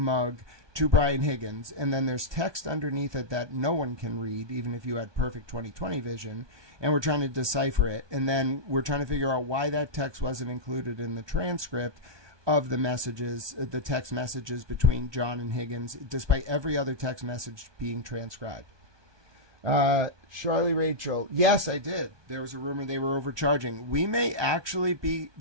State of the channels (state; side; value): late; left; 1.2 ms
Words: to Brian Higgins. And then there's text underneath it that no one can read, even if you had perfect 20/20 vision. And we're trying to decipher it. And then we're trying to figure out why that text wasn't included in the transcript of the messages, the text messages between John and Higgins, despite every other text message being transcribed. Charlie Rachel, yes, I did. There was a rumor they were overcharging. We may actually be,